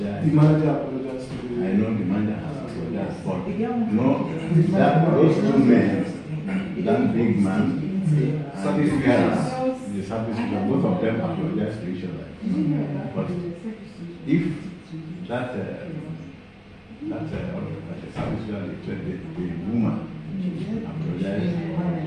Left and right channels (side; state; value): both; identical; correlation 1.00